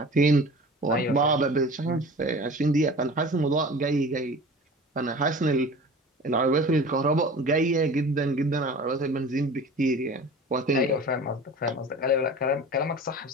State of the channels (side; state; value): both; normal; correlation 0.39